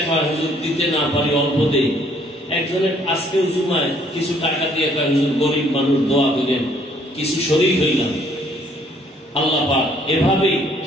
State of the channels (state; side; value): normal; both; correlation 0.63